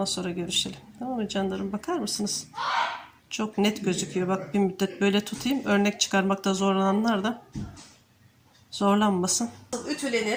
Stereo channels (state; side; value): identical; both; correlation 1.00